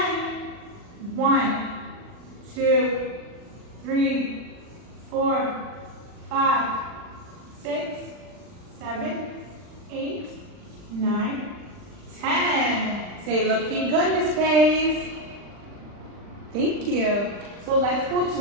1, 2, 3, 4, 5, 6, 7, 8, 9, 10. Say, looking good, Miss Faith. Thank you. So let's go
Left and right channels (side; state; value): left; late; 39 ms